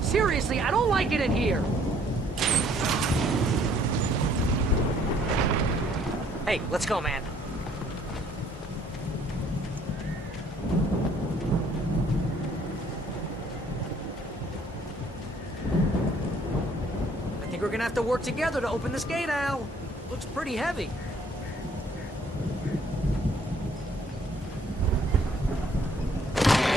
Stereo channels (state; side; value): normal; both; correlation 0.62